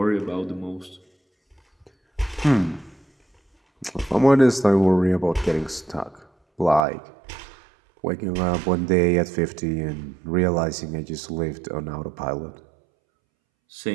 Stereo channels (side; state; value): left; drops out; at 6.9 s